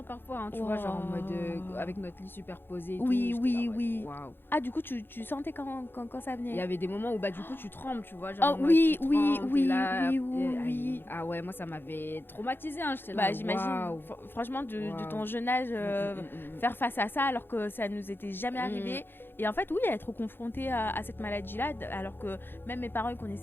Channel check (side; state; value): right; late; 0.10 ms